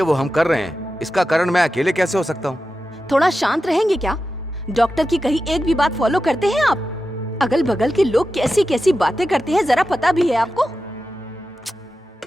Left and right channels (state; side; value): normal; both; correlation 0.92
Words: हम कर रहे हैं। इसका कारण मैं अकेले कैसे हो सकता हूँ? थोड़ा शांत रहेंगे क्या? डॉक्टर की कही एक भी बात फॉलो करते हैं आप? अगल बगल के लोग कैसी कैसी बातें करते हैं, जरा पता भी है आपको?